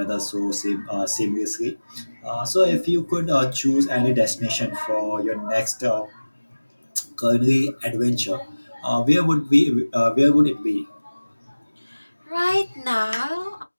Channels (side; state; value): both; inverted; correlation -1.00